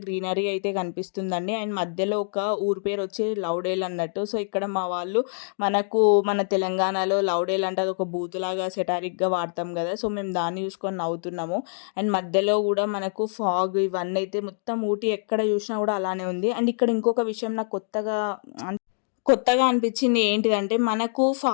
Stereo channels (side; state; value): right; silent; digital silence